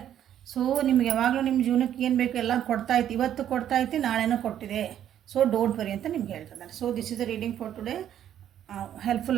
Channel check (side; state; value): left; quieter; 10.5 dB